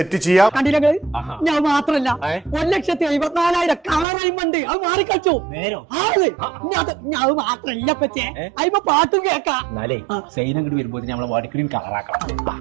ചെയ്യാം. കണ്ടില്ല ഞാൻ മാത്രല്ല 1,54,000 കളർ അയിമുണ്ട്. അത് മാറിക്കളിച്ചു അത് മാത്രല്ല പറ്റേ അയിമ പാട്ടും കേക്കാം. സൈനങ്ങോട്ട് വരുമ്പോ നമ്മളെ വാടിക്കടിയും കളറാക്കണം.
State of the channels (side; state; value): left; drops out; at 4.0 s